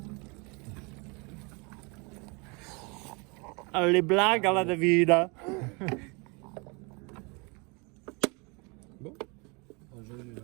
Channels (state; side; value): quieter; left; 30.5 dB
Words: noir. Les blagues à la David. Bon.